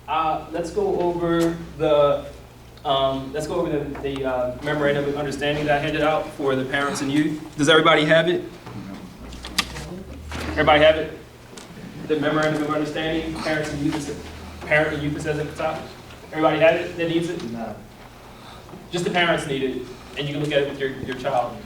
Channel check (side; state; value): both; identical; correlation 1.00